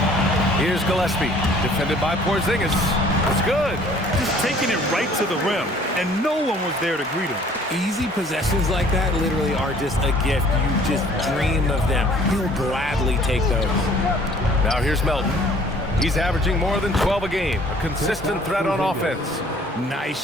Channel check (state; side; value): normal; both; correlation 0.55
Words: Here's Gillespie, defended by Porzingis. It's good. Just taking it right to the rim, and no one was there to greet him. Easy possessions like that literally are just a gift. You just dream of them. He'll gladly take those. Now here's Melton. He's averaging more than 12 a game. A consistent threat on offense. Nice